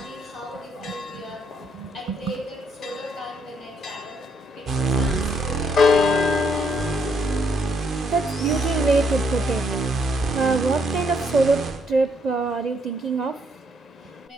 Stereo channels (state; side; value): normal; both; correlation 0.71